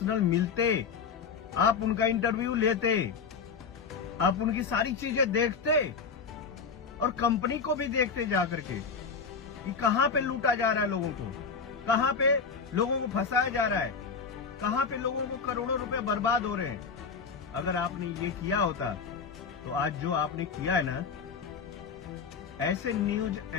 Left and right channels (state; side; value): quieter; right; 5.6 dB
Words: मिलते, आप उनका इंटरव्यू लेते, आप उनकी सारी चीजें देखते और कंपनी को भी देखते जाकर के कि कहां पे लूटा जा रहा है लोगों को, कहां पे लोगों को फंसाया जा रहा है, कहां पे लोगों को करोड़ों रुपए बर्बाद हो रहे हैं। अगर आपने ये किया होता तो आज जो आपने किया है ना, ऐसे न्यूज